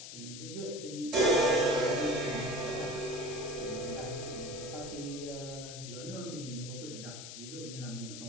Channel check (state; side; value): noise; left; hiss, 10 dB below the sound